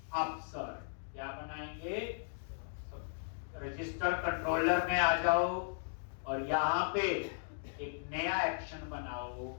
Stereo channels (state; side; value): silent; right; digital silence